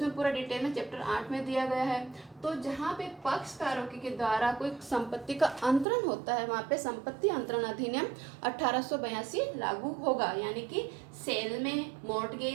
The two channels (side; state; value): left; drops out; at 5.9 s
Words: पूरा डिटेल में चैप्टर 8 में दिया गया है। तो जहाँ पे पक्षकारों के द्वारा कोई संपत्ति का अंतरण होता है वहाँ पे संपत्ति अंतरण अधिनियम 1882 लागू होगा, यानी कि सेल में,